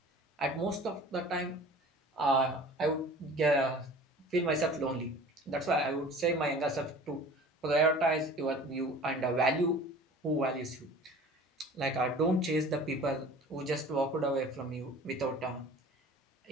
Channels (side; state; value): both; normal; correlation 0.43